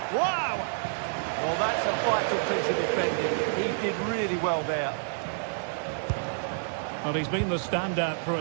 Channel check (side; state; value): left; silent; digital silence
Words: Wow! Well, that's a vital piece of defending. He did really well there. Well, he's been the standout for